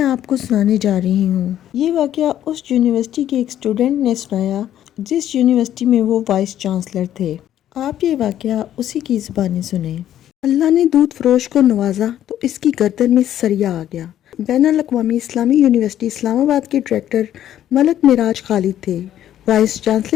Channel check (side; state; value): right; quieter; 11.5 dB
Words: آپ کو سنانے جا رہی ہوں۔ یہ واقعہ اس یونیورسٹی کے ایک اسٹوڈنٹ نے سنایا جس یونیورسٹی میں وہ وائس چانسلر تھے۔ آپ یہ واقعہ اسی کی زبانی سنیں۔ اللہ نے دودھ فروش کو نوازا تو اس کی گردن میں سریا آ گیا۔ بین الاقوامی اسلامی یونیورسٹی اسلام آباد کے ڈائریکٹر ملک معراج خالد تھے، وائس